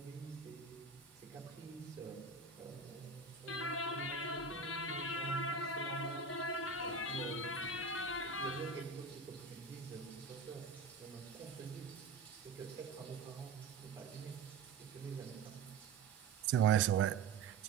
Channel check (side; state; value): left; quieter; 4.6 dB